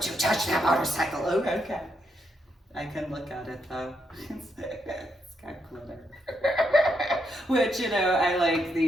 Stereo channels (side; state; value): both; normal; correlation 0.79